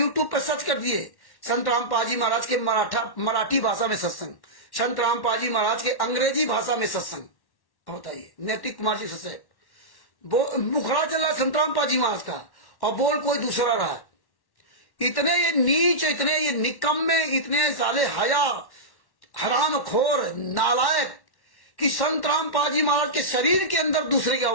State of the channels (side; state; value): right; late; 1.1 ms